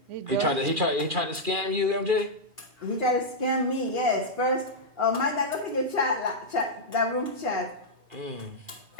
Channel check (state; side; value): late; left; 2.4 ms